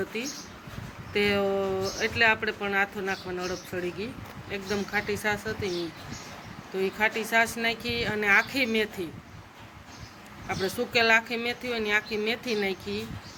હતી તે, એટલે આપણે પણ આથો નાખવાનો અડપ ચડી ગઈ. એકદમ ખાટી છાશ હતી તો એ ખાટી છાશ નાખી અને આખી મેથી, આપણે સૂકેલ આખી મેથી હોય ને આખી મેથી નાખી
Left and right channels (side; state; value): both; identical; correlation 1.00